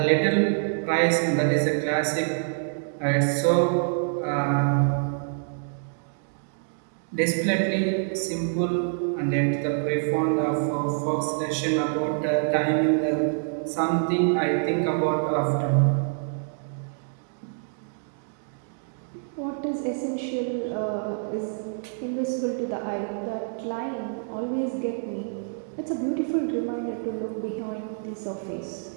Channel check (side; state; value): left; silent; digital silence